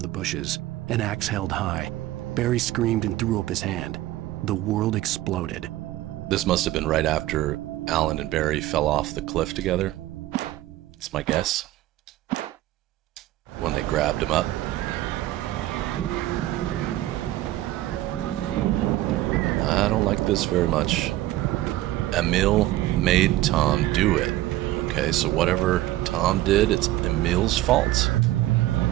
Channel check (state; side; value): quieter; left; 15.7 dB